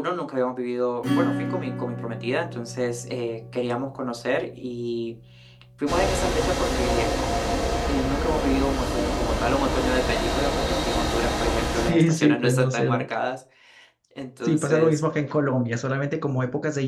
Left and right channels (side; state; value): both; identical; correlation 1.00